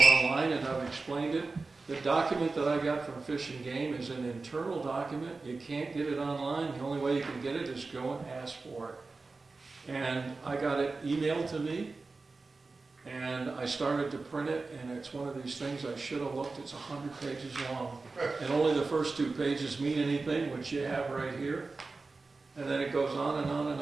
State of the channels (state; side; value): quieter; left; 3.8 dB